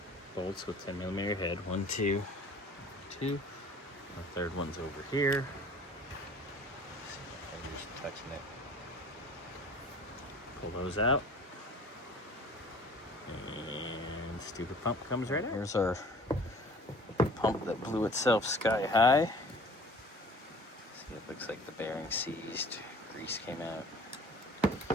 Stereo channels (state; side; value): normal; both; correlation 0.48